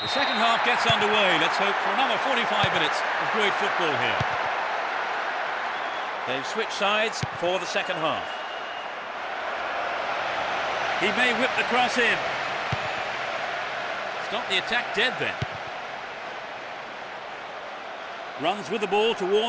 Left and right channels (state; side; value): identical; both; correlation 1.00